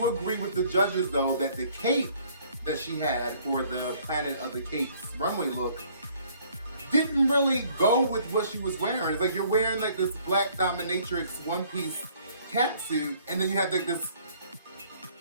agree with the judges, though, that the cape that she had for the Planet of the Capes runway look didn't really go with what she was wearing. It's like you're wearing like this black dominatrix one-piece catsuit, and then you have like this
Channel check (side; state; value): both; inverted; correlation -0.60